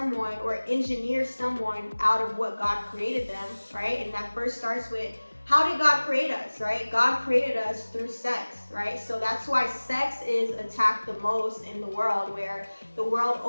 or engineer someone out of what God created them, right? And that first starts with, how did God create us, right? God created us through sex, right? So that's why sex is attacked the most in the world, where the world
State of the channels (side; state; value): both; inverted; correlation -1.00